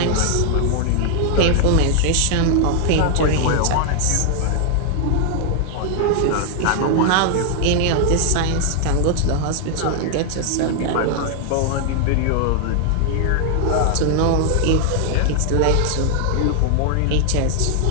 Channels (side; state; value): both; different; correlation 0.00